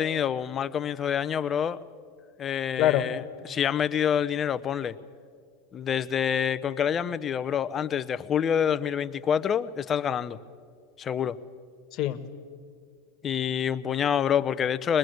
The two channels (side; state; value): right; quieter; 8.3 dB